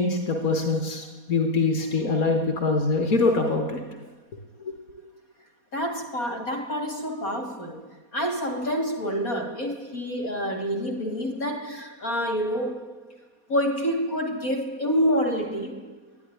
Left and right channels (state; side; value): late; right; 4.2 ms